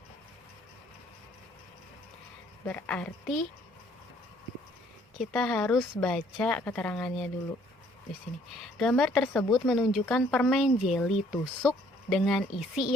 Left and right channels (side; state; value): both; normal; correlation 0.62